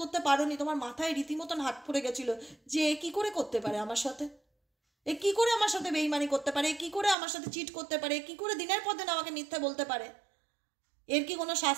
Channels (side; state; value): left; drops out; at 7.2 s